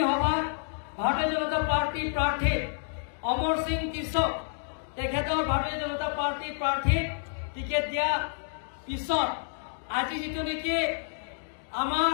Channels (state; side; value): silent; right; digital silence